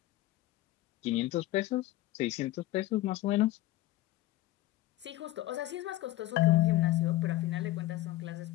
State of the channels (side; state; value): right; quieter; 16.1 dB